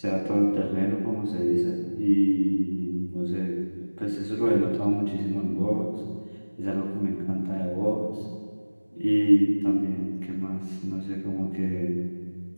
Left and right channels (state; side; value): inverted; both; correlation -1.00